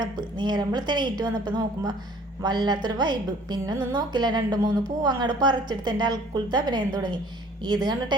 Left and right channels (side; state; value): both; normal; correlation 0.53